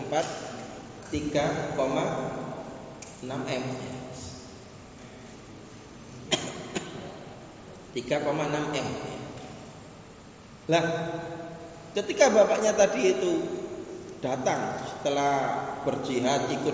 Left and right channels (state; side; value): identical; both; correlation 1.00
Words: 4 3,6 M. 3,6 M. Lah, ketika bapaknya tadi itu datang setelah berjihad,